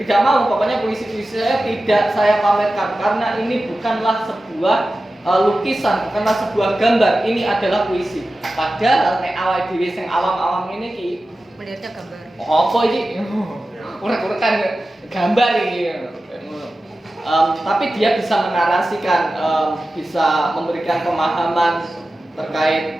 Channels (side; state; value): both; normal; correlation 0.94